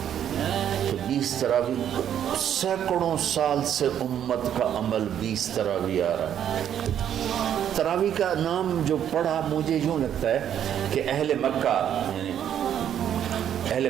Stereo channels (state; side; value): quieter; left; 9.8 dB